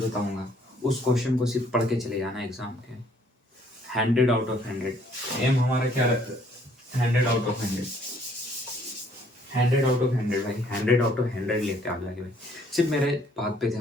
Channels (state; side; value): normal; both; correlation 0.63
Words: बताऊंगा, उस क्वेश्चन को सिर्फ पढ़ के चले जाना एग्जाम के। 100 आउट ऑफ 100 एम हमारा क्या रहता है? 100 आउट ऑफ 100, 100 आउट ऑफ 100 भाई, 100 आउट ऑफ 100 लेके आ जाएंगे भाई। सिर्फ मेरे बात पे